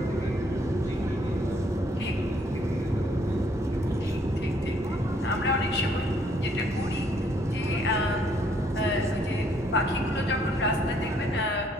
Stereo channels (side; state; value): both; normal; correlation 0.66